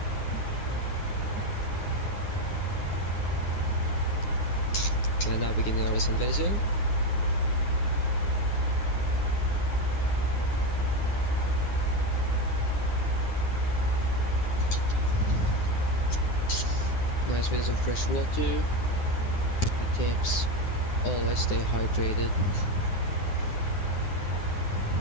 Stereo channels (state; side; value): late; right; 9.7 ms